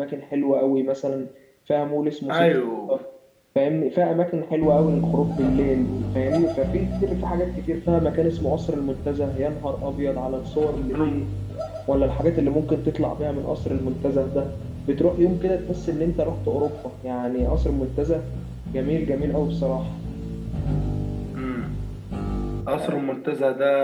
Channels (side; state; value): both; identical; correlation 1.00